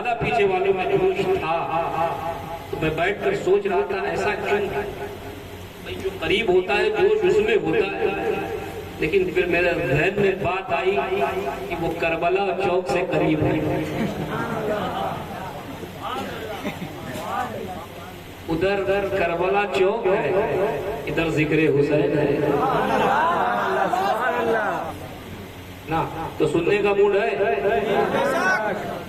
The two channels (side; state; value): both; identical; correlation 1.00